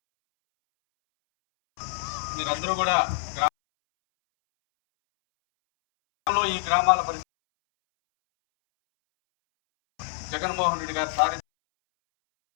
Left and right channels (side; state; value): right; silent; 61 dB below the other